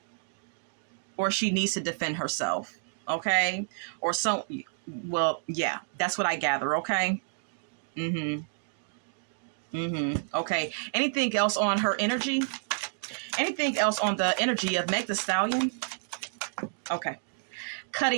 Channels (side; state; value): left; silent; digital silence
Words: Or she needs to defend herself. Okay. Or so, well, yeah, that's what I gather. Okay. Okay. Anything else on her energy? Anything else on the energy of Meg the Stallion? Okay.